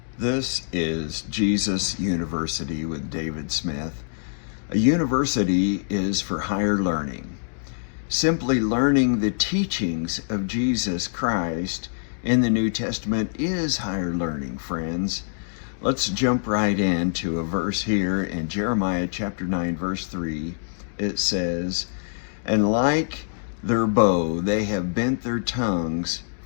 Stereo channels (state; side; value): silent; right; digital silence